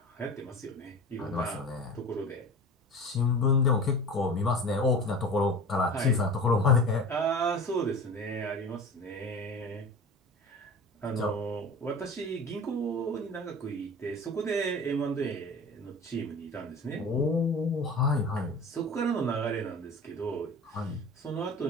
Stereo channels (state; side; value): normal; both; correlation 0.36